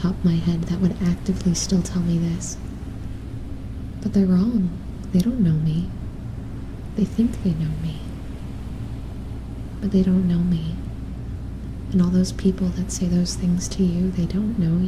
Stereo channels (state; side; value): identical; both; correlation 1.00